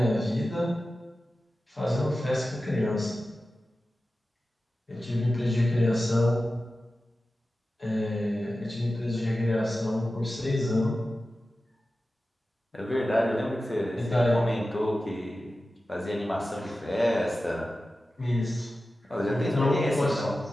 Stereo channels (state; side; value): normal; both; correlation 0.94